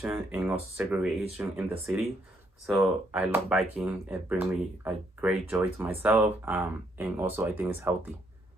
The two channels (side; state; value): both; normal; correlation 0.72